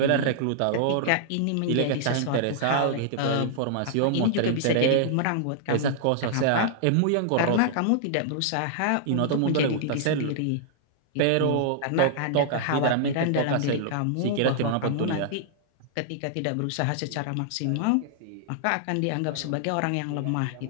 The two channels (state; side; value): different; both; correlation -0.01